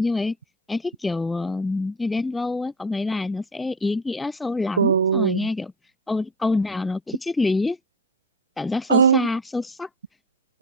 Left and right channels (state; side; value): normal; both; correlation 0.25